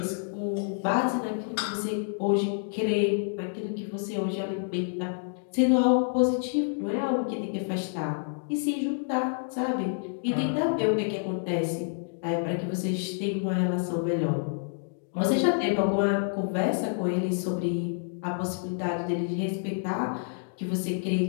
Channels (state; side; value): silent; right; digital silence